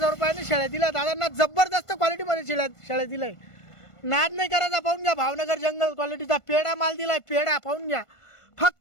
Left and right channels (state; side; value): late; right; 1.5 ms